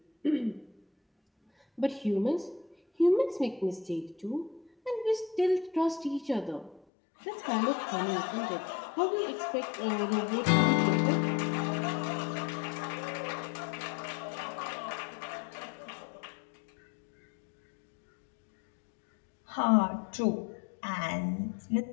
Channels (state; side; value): drops out; right; at 6.8 s